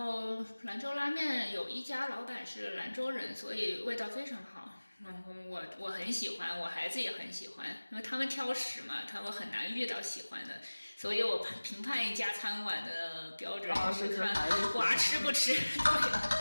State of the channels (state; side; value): inverted; both; correlation -1.00